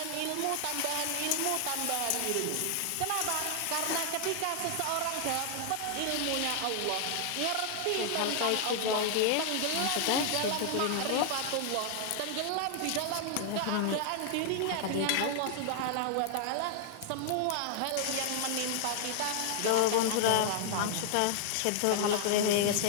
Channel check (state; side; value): different; both; correlation 0.00